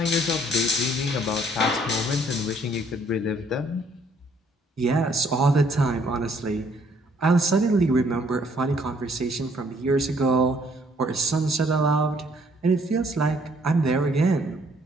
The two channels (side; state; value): both; normal; correlation 0.64